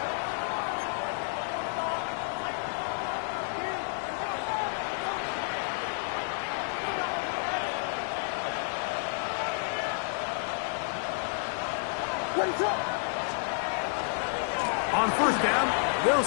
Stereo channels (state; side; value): silent; right; 58 dB below the other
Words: On first down, they'll